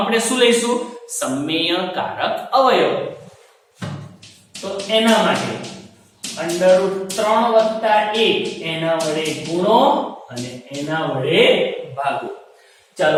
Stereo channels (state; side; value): identical; both; correlation 1.00